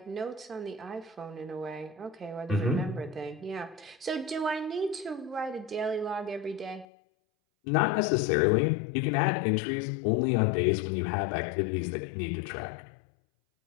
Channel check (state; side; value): drops out; right; at 6.9 s